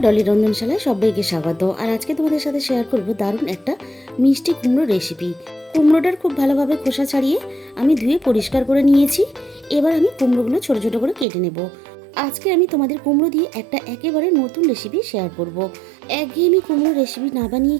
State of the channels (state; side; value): drops out; left; at 11.2 s